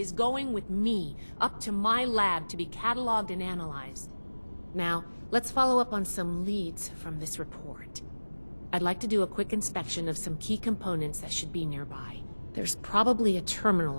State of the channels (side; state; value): both; inverted; correlation -1.00